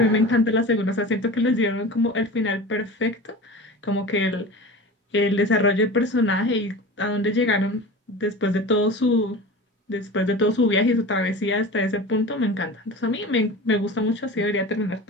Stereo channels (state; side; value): normal; both; correlation 0.33